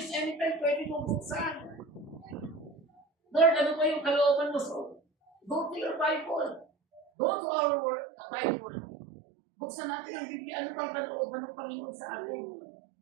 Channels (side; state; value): left; drops out; at 7.0 s